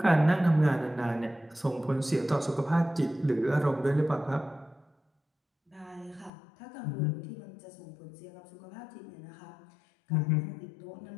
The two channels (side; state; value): right; drops out; at 6.3 s